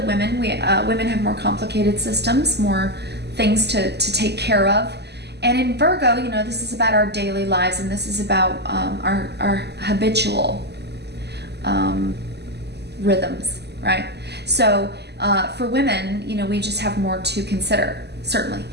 Women have more complicated systems, more things to take care of. And in Virgo, this is about our daily lives, and this is about our habitual rhythms, right? So for women, we just have more to consider, certainly.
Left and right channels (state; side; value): late; left; 0.49 ms